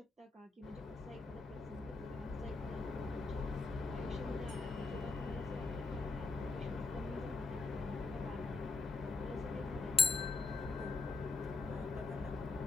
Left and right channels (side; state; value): right; quieter; 3.8 dB